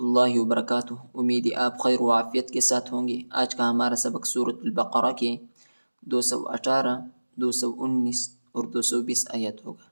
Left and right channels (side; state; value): both; inverted; correlation -1.00